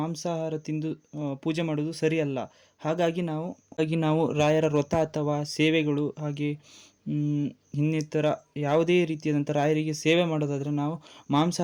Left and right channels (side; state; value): both; identical; correlation 1.00